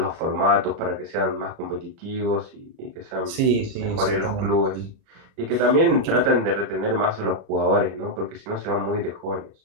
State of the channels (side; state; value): left; late; 38 ms